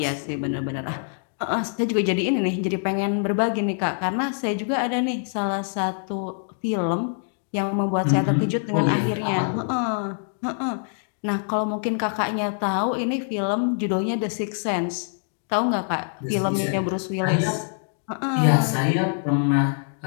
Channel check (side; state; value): right; silent; 62 dB below the other